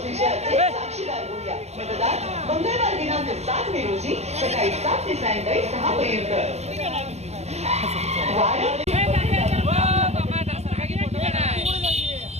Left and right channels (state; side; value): late; left; 0.31 ms